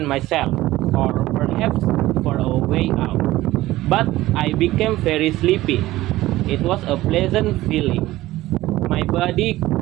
myself, or perhaps for a way out. But I became very sleepy. It was a pleasant feeling. My body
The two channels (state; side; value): quieter; left; 16.7 dB